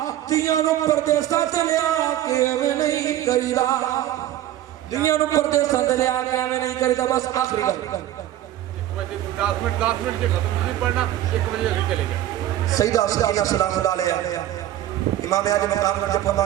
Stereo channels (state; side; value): quieter; left; 12.9 dB